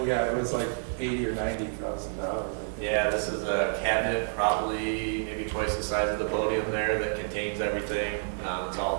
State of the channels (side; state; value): left; silent; digital silence